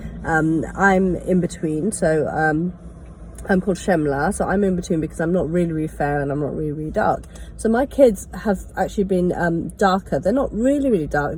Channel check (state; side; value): identical; both; correlation 1.00